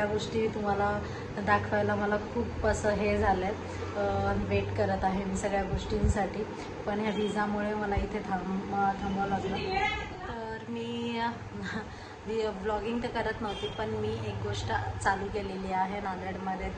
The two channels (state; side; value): identical; both; correlation 1.00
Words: गोष्टी तुम्हाला दाखवायला मला खूप असं हे झालं आहे, वेट करत आहे मी सगळ्या गोष्टींसाठी. पण ह्या विजामुळे मला इथे थांबावं लागलं. तर मी ब्लॉगिंग तर करत नव्हती, पण मी एक गोष्ट चालू केलेली आहे नांदेडमध्ये.